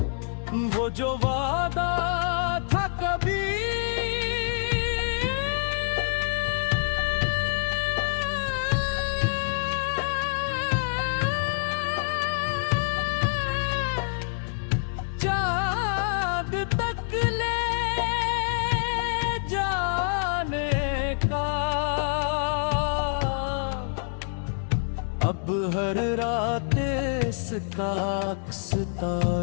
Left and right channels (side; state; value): right; silent; 61 dB below the other